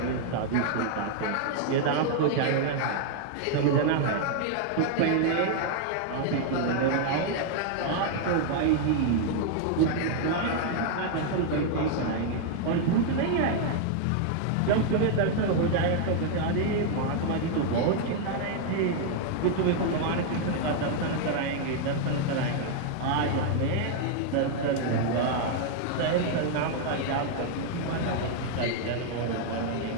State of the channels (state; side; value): different; both; correlation 0.00